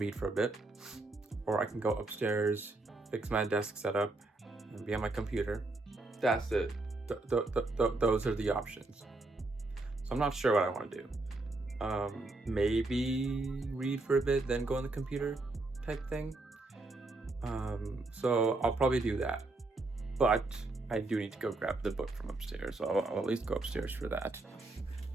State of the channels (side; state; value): left; quieter; 3.0 dB